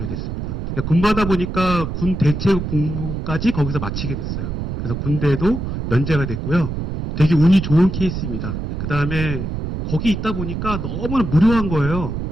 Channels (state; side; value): noise; right; rumble, 4 dB below the sound